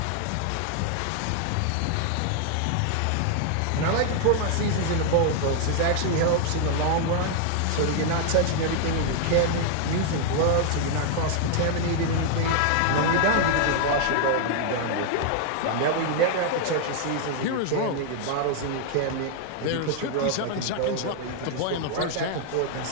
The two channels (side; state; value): both; different; correlation 0.00